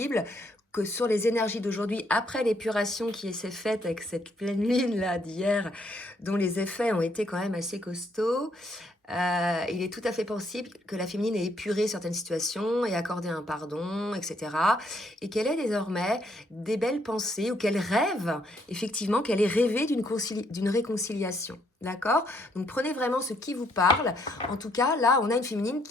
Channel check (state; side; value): normal; both; correlation 0.71